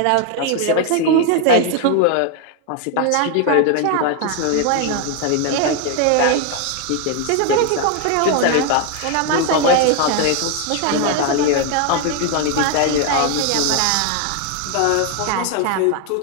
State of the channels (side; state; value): both; different; correlation 0.01